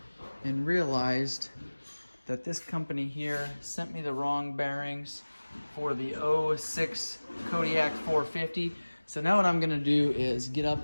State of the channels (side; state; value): both; inverted; correlation -1.00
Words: and realized that this company here sent me the wrong bearings for the 06 Kodiak 450. So now what I'm gonna do is get up